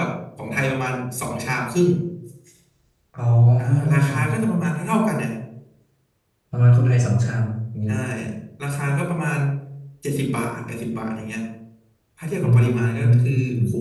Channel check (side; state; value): both; identical; correlation 1.00